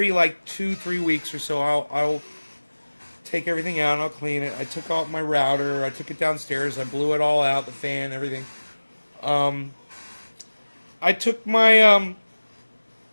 like 2-3 weeks or so, I'll take everything out and I'll clean it. I took out my router. I took it downstairs. I blew it all out, the fan, everything. I took my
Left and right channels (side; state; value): both; inverted; correlation -1.00